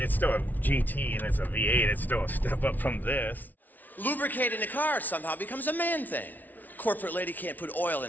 still a GT and it's a V8. It's still a step up from this. Lubricating a car somehow becomes a man thing. Corporate lady can't put oil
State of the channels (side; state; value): right; late; 0.081 ms